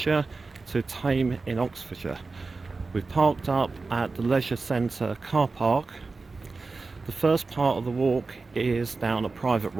to Thame in Oxfordshire. We've parked up at the Leisure Centre car park. The first part of the walk is down a private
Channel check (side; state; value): left; quieter; 3.9 dB